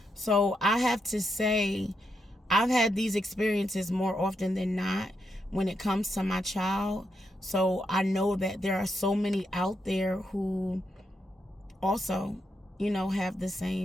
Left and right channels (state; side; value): normal; both; correlation 0.82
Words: So I have to say, I've had these experiences more often than not when it comes to my child. So I know that there are so many out there who also, have the